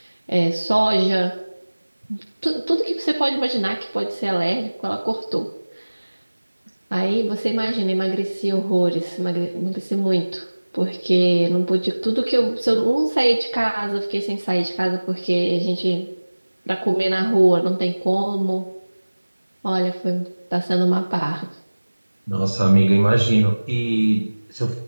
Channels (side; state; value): both; inverted; correlation -1.00